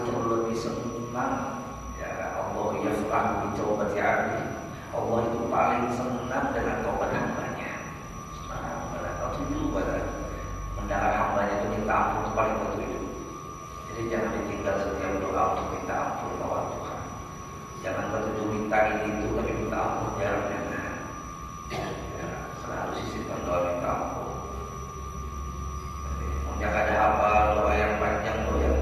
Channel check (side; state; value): both; identical; correlation 1.00